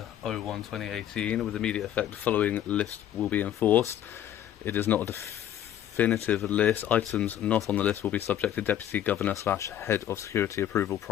01/2018 with immediate effect. The following list will be enforced. It is not a definitive list. Items not on the list will be subject to Deputy Governor / Head of Security approval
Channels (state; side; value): quieter; right; 11.2 dB